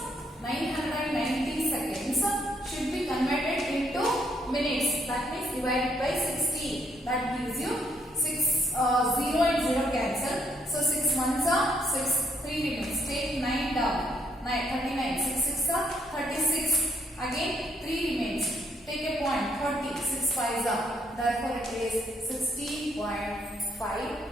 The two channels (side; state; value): both; normal; correlation 0.71